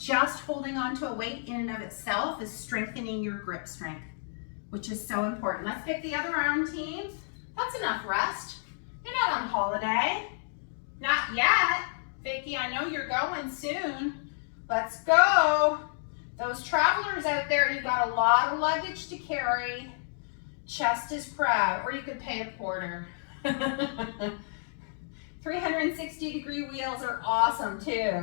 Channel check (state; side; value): silent; right; digital silence